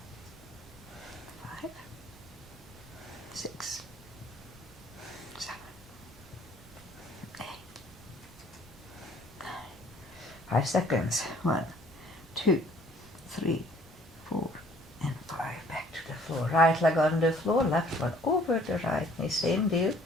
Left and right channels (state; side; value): normal; both; correlation 0.58